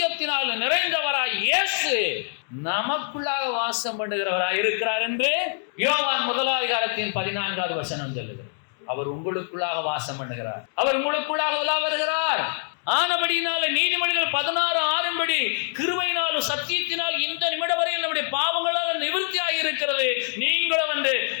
நிறைந்தவராய் இயேசு நமக்குள்ளாக வாசம் பண்ணுகிறவராய் இருக்கிறார் என்று யோவான் 1:14 வசனம் சொல்லுகிறது. அவர் உங்களுக்குள்ளாக வாசம் பண்ணுகிறார், அவர் உங்களுக்குள்ளாக உலா வருகிறார். ஆனபடியினால நீதிமொழிகள் 16:6 கிருபையினாலும் சத்தியத்தினால் இந்த நிமிடம் வரை நம்முடைய பாவங்களால் நிவர்த்தி ஆகியிருக்கிறது. நீங்களும் வந்து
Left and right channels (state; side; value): silent; right; 62 dB below the other